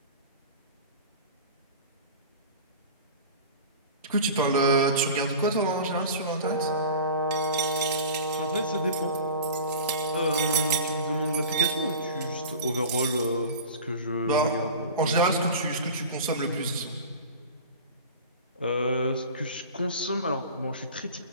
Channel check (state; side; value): inverted; both; correlation -0.36